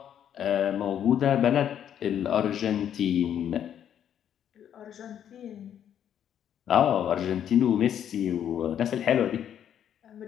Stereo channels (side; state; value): right; quieter; 9.6 dB